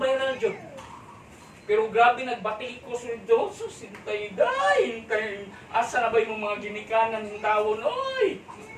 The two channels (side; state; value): both; identical; correlation 1.00